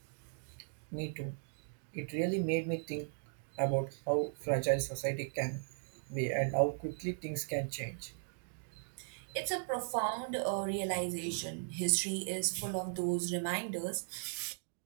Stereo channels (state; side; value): silent; left; digital silence